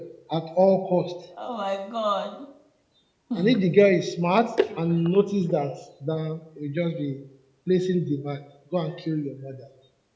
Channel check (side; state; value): both; identical; correlation 1.00